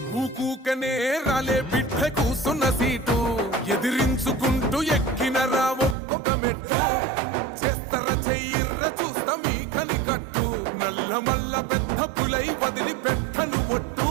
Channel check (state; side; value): drops out; left; at 6.0 s